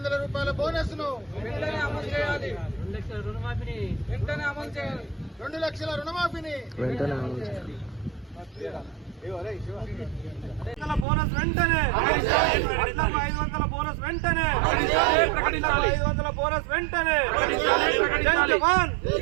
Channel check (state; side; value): drops out; left; at 11.1 s